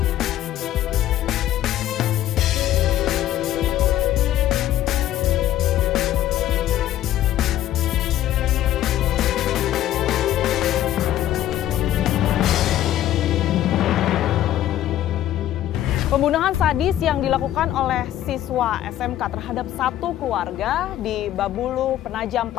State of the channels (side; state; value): right; quieter; 12.7 dB